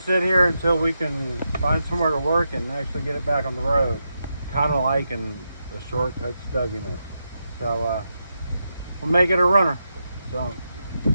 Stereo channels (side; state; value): both; inverted; correlation -0.85